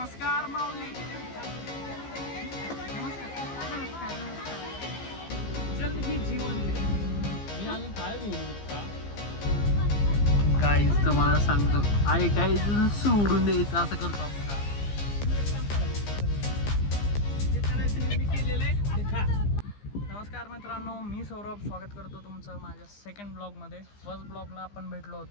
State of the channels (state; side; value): late; right; 15 ms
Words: माऊली. जल ही जीवन आहे. काहीच तुम्हाला सांगतो आई काहीच सोडून द्यायचं असं करतो आपण. नमस्कार मित्रांनो, मी सौरभ स्वागत करतो तुमचं माझ्या सेकंड ब्लॉगमध्ये. फर्स्ट ब्लॉगला आपण भेटलो